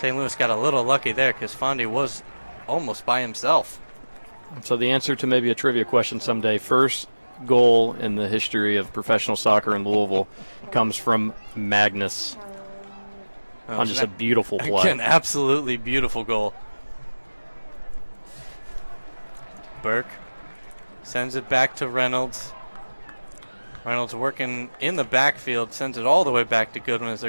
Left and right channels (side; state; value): both; inverted; correlation -1.00